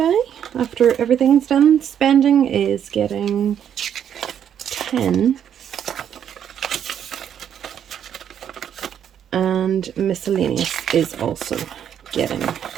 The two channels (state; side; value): quieter; left; 9.2 dB